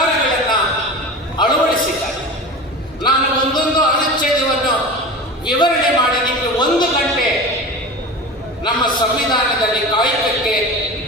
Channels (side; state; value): both; normal; correlation 0.32